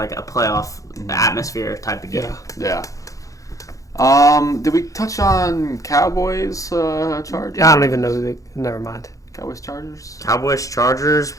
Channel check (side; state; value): right; late; 0.16 ms